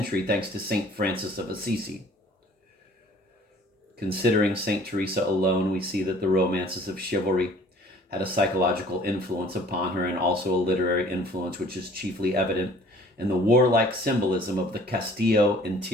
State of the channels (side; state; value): both; normal; correlation 0.53